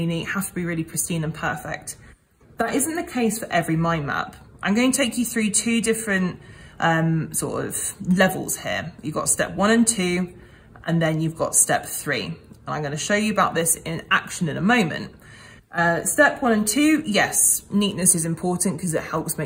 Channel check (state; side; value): identical; both; correlation 1.00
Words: neat, have to be really pristine and perfect. That isn't the case for every mind map. I'm going to take you through two different sort of levels here. You've got step 1 and 2, and then you've got step 3. And I'm going to show you about this in action in a moment. Step 1 and 2, yes, neatness is important because it helps